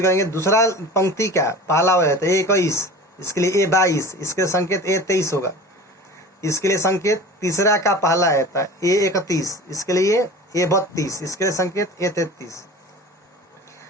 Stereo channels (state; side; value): normal; both; correlation 0.38